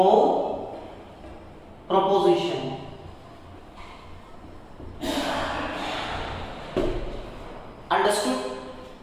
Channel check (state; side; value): identical; both; correlation 1.00